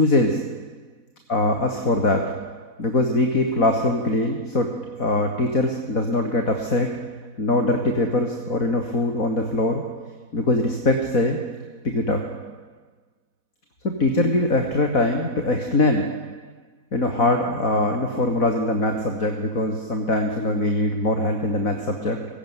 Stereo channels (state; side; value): late; right; 4.1 ms